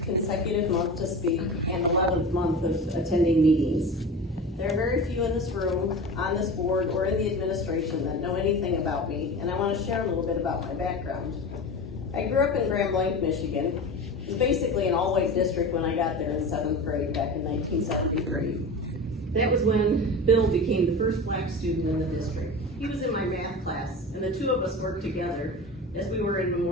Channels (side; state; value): both; normal; correlation 0.31